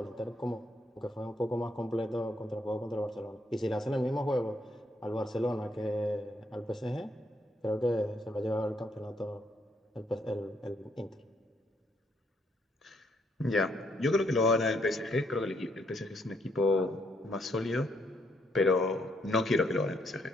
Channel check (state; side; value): normal; both; correlation 0.73